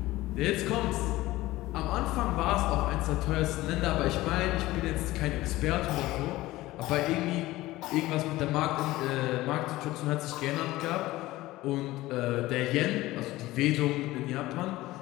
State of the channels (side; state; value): right; quieter; 17.7 dB